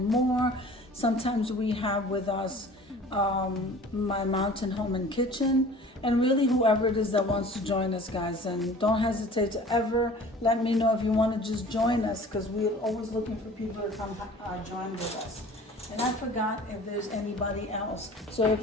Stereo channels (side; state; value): both; normal; correlation 0.45